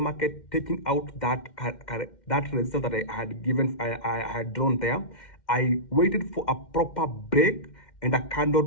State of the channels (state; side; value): late; right; 2.1 ms